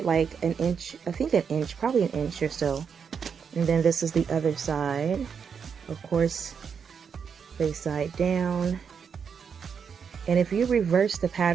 like an inch, I think an inch, probably an inch or so. And then this is the other side. Of course, face side down. And if you reverse the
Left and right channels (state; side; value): quieter; left; 6.6 dB